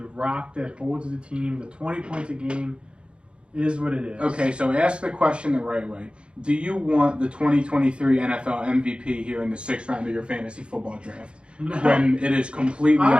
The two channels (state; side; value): late; left; 0.056 ms